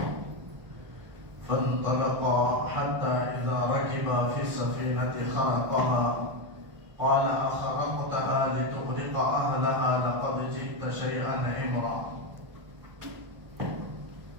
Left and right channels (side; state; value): left; late; 1.3 ms